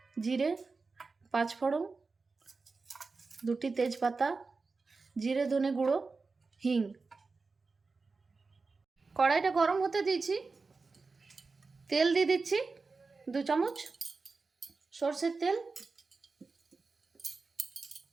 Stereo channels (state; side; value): quieter; left; 4.2 dB